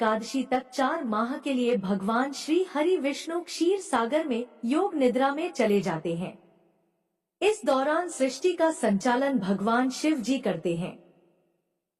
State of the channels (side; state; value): both; identical; correlation 1.00